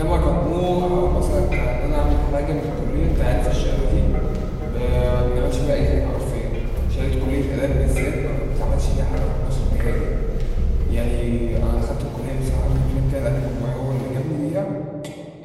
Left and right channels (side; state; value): both; identical; correlation 1.00